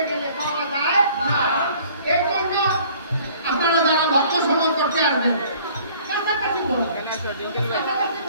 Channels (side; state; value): both; inverted; correlation -0.54